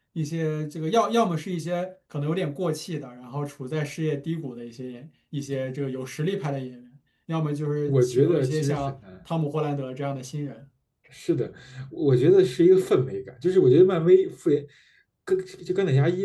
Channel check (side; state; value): both; identical; correlation 1.00